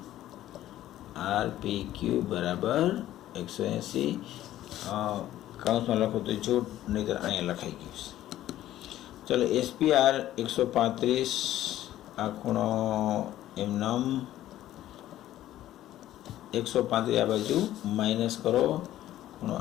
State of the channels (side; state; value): right; quieter; 13.4 dB